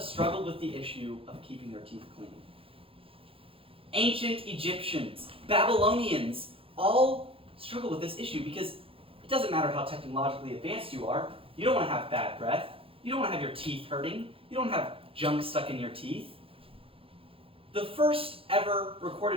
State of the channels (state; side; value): late; left; 0.27 ms